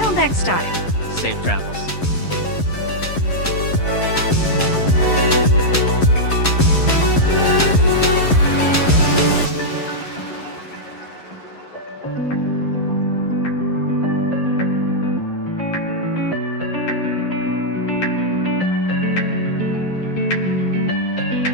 next time. Safe travels.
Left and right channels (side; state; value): right; late; 11 ms